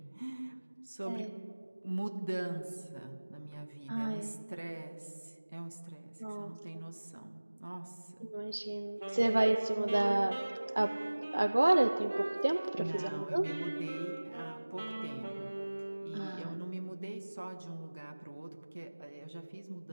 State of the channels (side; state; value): both; inverted; correlation -1.00